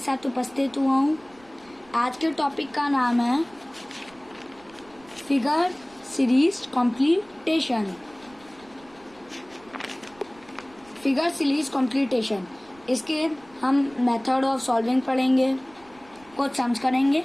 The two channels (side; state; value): right; noise; rumble, 27 dB below the sound